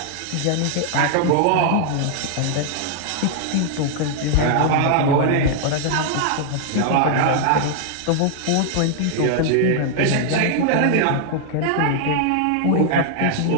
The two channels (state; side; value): different; both; correlation -0.01